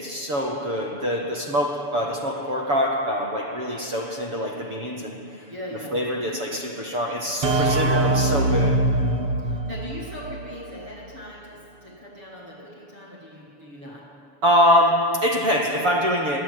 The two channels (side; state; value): left; late; 7.0 ms